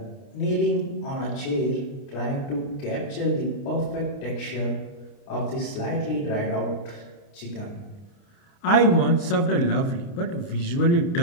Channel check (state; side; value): late; right; 29 ms